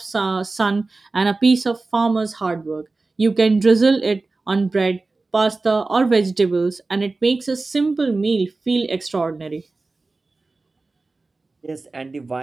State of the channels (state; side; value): quieter; left; 3.5 dB